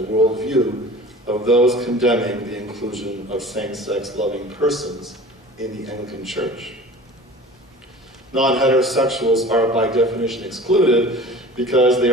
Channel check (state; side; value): normal; both; correlation 0.41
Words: worldview of those condemning the inclusion of same-sex loving persons in the Anglican Church. Non-heterosexuals are by definition excluded because they